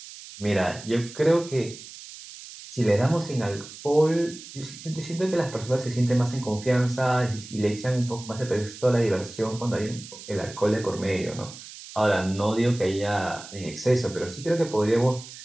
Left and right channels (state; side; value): noise; right; hiss, 15 dB below the sound